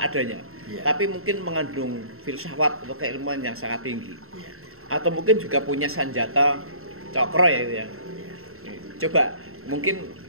adanya, iya. Tapi mungkin mengandung filsafat atau keilmuan yang sangat tinggi, iya. Atau mungkin juga punya senjata cokro ya itu ya. Iya. Coba mungkin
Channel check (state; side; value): late; left; 0.62 ms